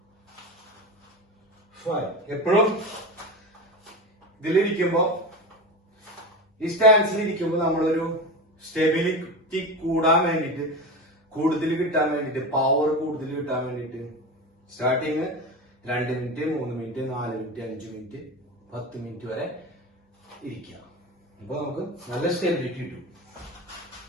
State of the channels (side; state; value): both; normal; correlation 0.25